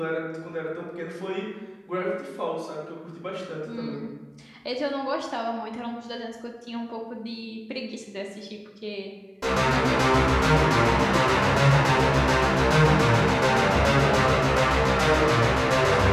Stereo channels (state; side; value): identical; both; correlation 1.00